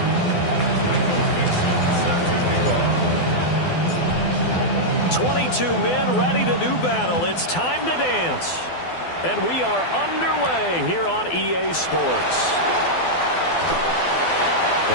Two men ready to do battle. It's time to dance. And we are underway here on EA Sports.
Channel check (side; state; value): right; late; 12 ms